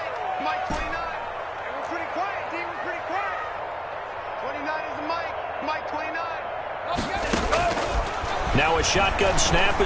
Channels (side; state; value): both; identical; correlation 1.00